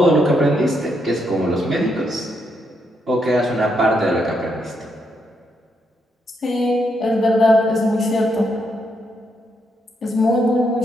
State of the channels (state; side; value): normal; both; correlation 0.78